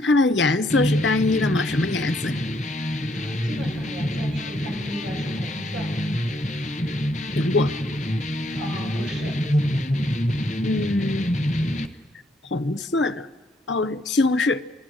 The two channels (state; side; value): normal; both; correlation 0.71